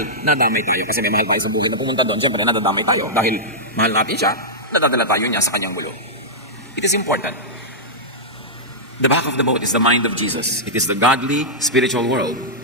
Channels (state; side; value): normal; both; correlation -0.11